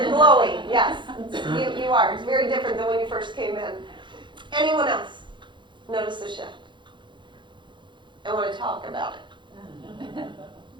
glowing. Yes, you are. It's very different than when you first came in. Anyone else notice the shift? I want to talk about it.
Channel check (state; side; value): late; left; 0.23 ms